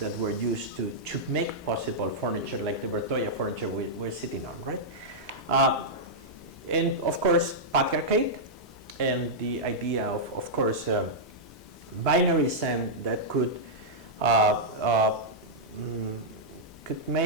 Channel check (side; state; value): both; normal; correlation -0.09